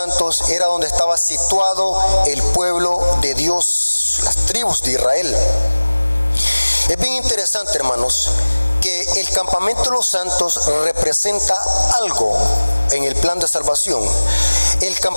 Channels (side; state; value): both; inverted; correlation -1.00